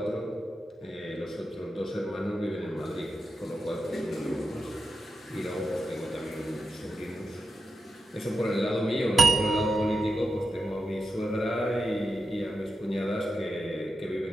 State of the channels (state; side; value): normal; both; correlation 0.88